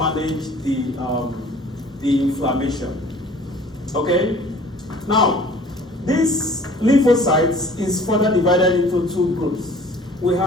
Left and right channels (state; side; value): normal; both; correlation 0.50